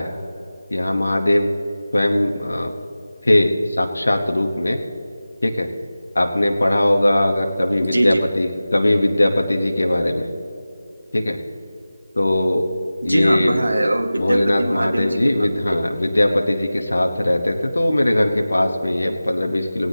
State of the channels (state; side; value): inverted; both; correlation -0.96